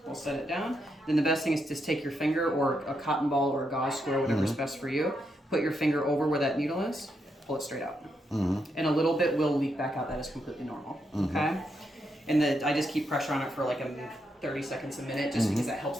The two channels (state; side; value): normal; both; correlation 0.81